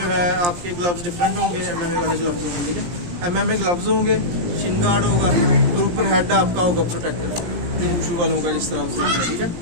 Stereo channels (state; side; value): late; left; 17 ms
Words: है आपके ग्लव्स डिफरेंट होंगे, एमएमए वाले ग्लव्स होंगे, ठीक है। एमएमए ग्लव्स होंगे, शिन गार्ड होगा और ऊपर हेड आपका होगा प्रोटेक्टर, जो वुशु वालों का जिस तरह से, ठीक है।